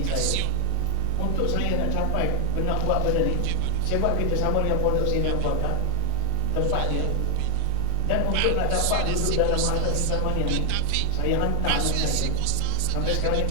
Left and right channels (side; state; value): both; different; correlation -0.01